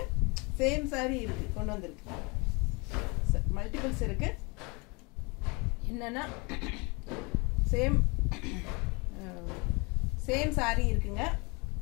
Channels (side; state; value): right; quieter; 28.8 dB